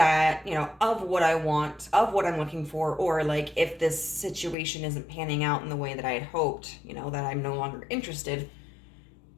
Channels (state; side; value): drops out; right; at 4.5 s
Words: of what I want, of what I'm looking for, or like if this situation isn't panning out in the way that I had hoped, that I'm no longer interested.